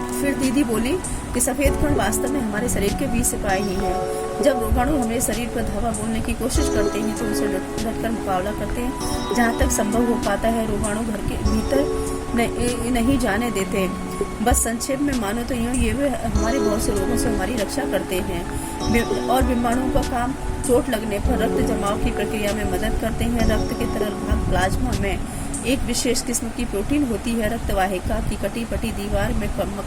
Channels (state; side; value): identical; both; correlation 1.00